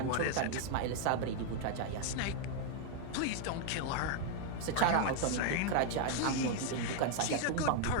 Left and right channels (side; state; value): both; different; correlation 0.00